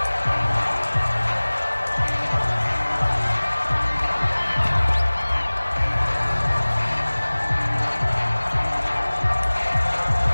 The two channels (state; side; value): inverted; both; correlation -1.00